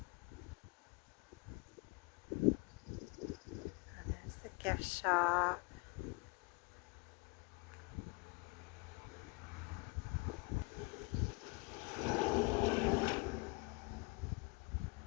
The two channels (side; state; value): right; quieter; 28.9 dB